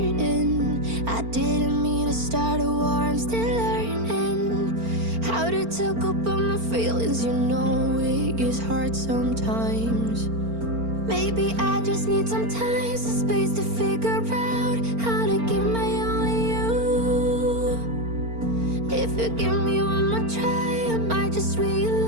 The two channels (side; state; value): left; late; 4.4 ms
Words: I didn't mean to start a war. I'm still learning how to to talk about my feelings, you know it gets hard sometimes. Maybe I just need some time, some space to figure out how to give my only you. If you give me one more try, I might just